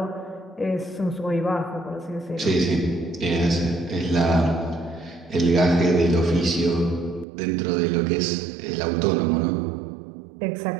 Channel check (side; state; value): left; drops out; at 7.2 s